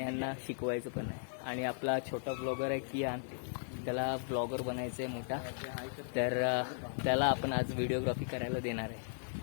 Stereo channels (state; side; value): silent; right; digital silence